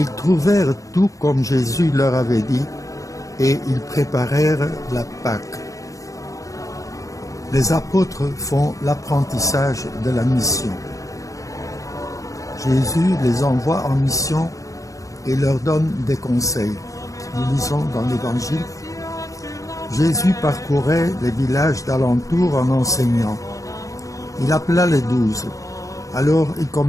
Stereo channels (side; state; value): right; late; 0.16 ms